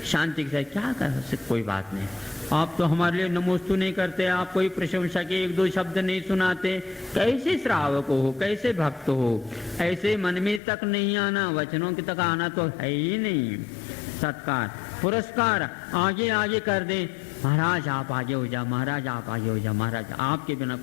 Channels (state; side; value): drops out; right; at 10.6 s